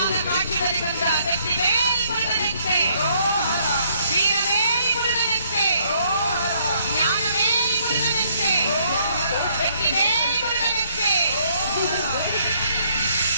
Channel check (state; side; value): inverted; both; correlation -0.68